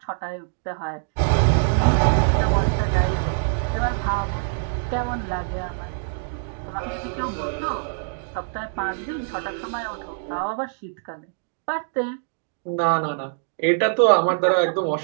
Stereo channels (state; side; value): silent; left; digital silence